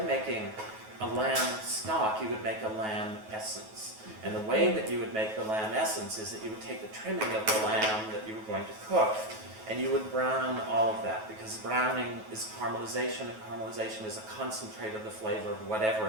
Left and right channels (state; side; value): late; left; 9.3 ms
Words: a lamb stock, you would make a lamb essence. And the way that you would make the lamb essence is that you would take the trimming of the lamb that you were going to cook, and you would brown all of that, because browning is caramelization, and caramelization is a concentrate of the flavor of whatever